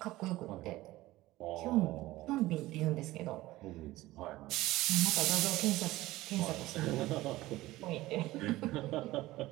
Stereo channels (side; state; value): left; quieter; 17.7 dB